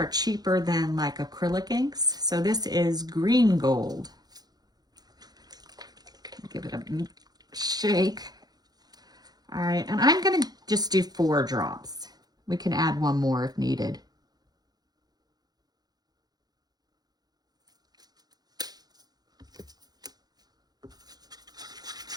cheaper than like acrylic inks. So this is green gold. Give it a shake. All right, and I'm gonna just do 4 drops. We can add 1 more if needed.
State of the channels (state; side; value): late; left; 0.19 ms